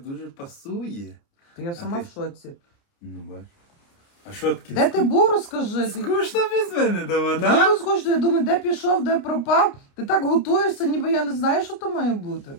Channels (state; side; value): late; right; 29 ms